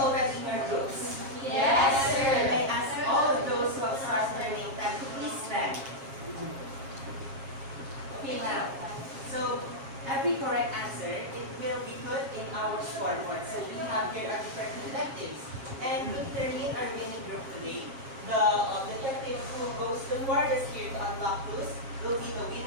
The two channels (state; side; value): late; left; 7.4 ms